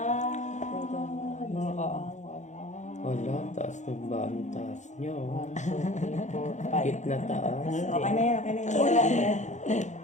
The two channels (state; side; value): late; right; 0.35 ms